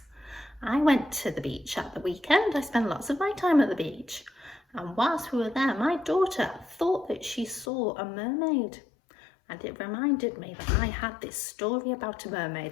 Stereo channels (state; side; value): drops out; right; at 7.7 s